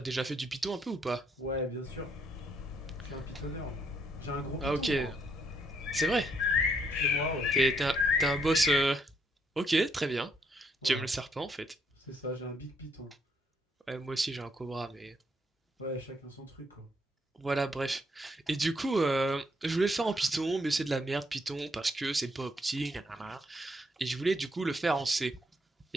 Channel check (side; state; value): both; normal; correlation 0.72